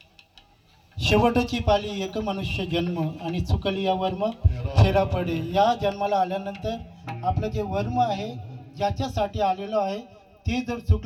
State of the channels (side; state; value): both; identical; correlation 1.00